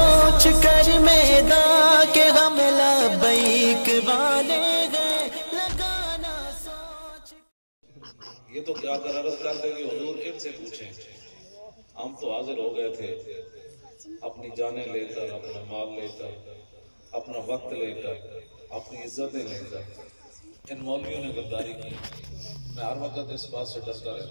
کر میدان کے غم لبیک والے گئے لگانا سوچ. یہ تو کیا کر عرض کر دیں گے حضور ان سے پوچھیں. ہم تو حاضر ہو گئے تھے اپنی جانیں لے کر، اپنا مال لے کر، اپنا وقت لے کر، اپنی عزتیں لے کر. ان مولویوں نے غداری کی. میں ہر وقت اس بات سے ڈرتا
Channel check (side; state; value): both; inverted; correlation -1.00